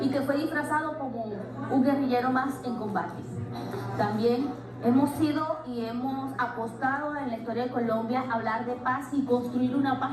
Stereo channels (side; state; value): both; identical; correlation 1.00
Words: y que fue disfrazado como un guerrillero más en combate. También hemos sido y hemos apostado en la historia de Colombia a hablar de paz y construir una paz